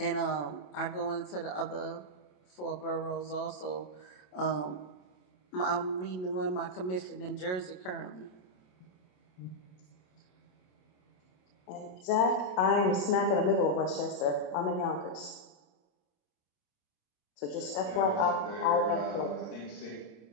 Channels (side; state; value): right; late; 27 ms